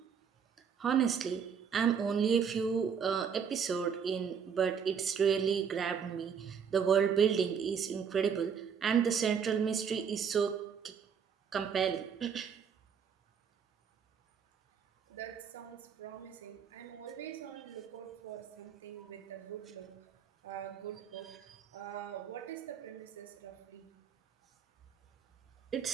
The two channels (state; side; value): quieter; left; 7.0 dB